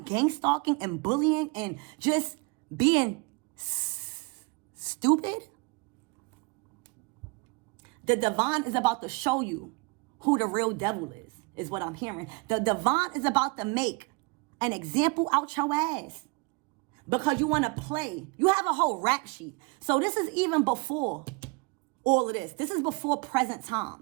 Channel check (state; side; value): quieter; left; 29.6 dB